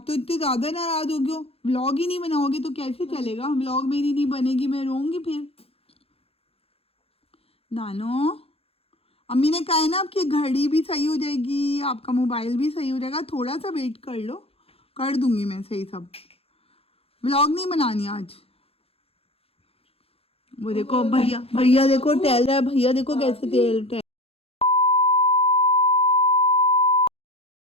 तो इतने ज़्यादा नाराज़ हो गए, व्लॉग ही नहीं बनाओगे तो कैसे चलेगा? व्लॉग मेरी नहीं बनेगी, मैं रोऊंगी फिर। नानो, अम्मी ने कहा है ना आपकी घड़ी भी सही हो जाएगी, आपका मोबाइल भी सही हो जाएगा, थोड़ा सा वेट कर लो, कर दूंगी मैं सही सब। व्लॉग नहीं बनानी आज। वो देखो भैया देखो टहल रहा है, भैया देखो कैसे टहल।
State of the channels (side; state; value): right; late; 0.28 ms